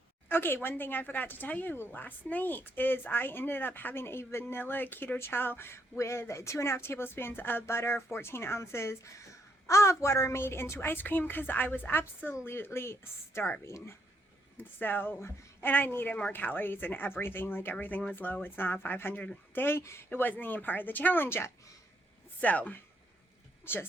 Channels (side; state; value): both; normal; correlation 0.74